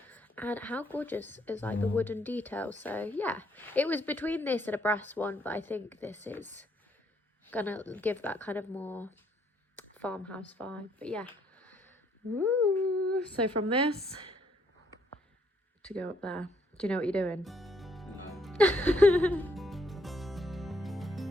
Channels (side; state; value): both; normal; correlation 0.70